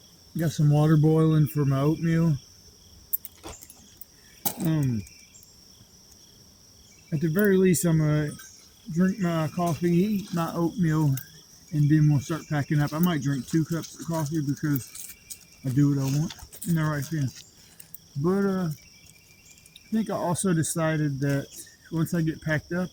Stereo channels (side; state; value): both; identical; correlation 1.00